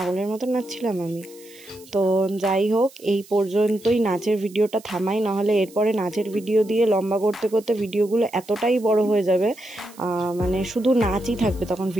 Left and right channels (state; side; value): noise; right; hiss, 23 dB below the sound